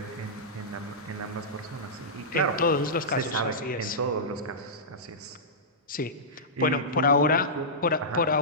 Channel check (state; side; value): normal; both; correlation -0.15